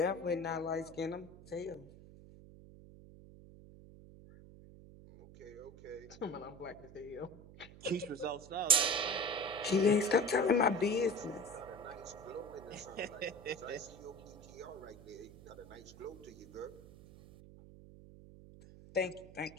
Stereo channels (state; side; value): noise; right; hum, 18 dB below the sound